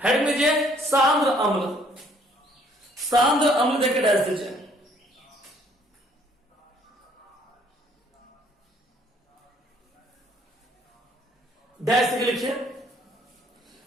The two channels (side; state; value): both; normal; correlation 0.62